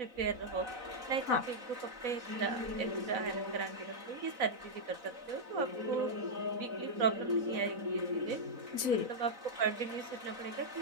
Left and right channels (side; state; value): left; late; 4.0 ms